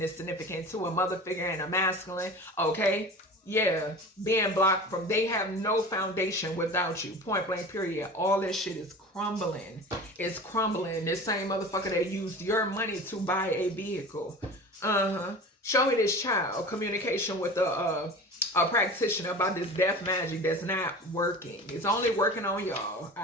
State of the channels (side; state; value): both; normal; correlation 0.36